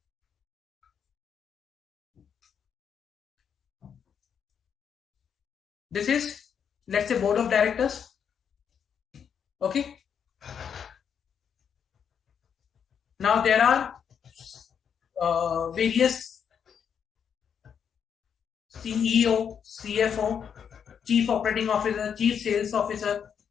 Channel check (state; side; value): quieter; right; 7.6 dB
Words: This is, let's say, board of directors. Okay. Now there are various CEO, CFO, Chief Operating Officer, Chief Sales Officer.